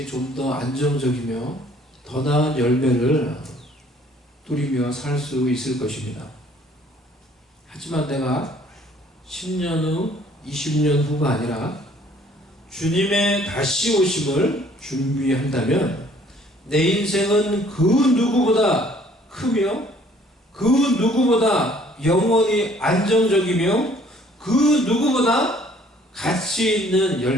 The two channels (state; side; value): normal; both; correlation 0.58